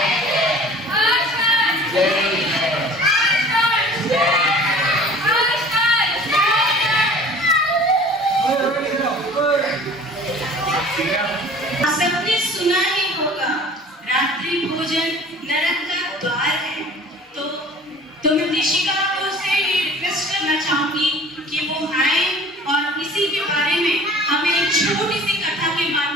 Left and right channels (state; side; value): normal; both; correlation 0.46